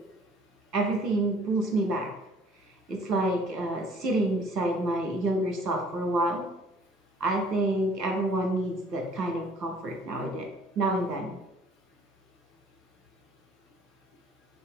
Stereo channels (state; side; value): normal; both; correlation 0.56